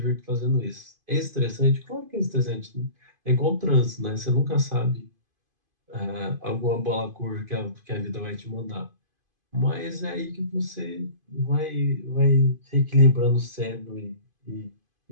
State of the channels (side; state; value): left; late; 2.5 ms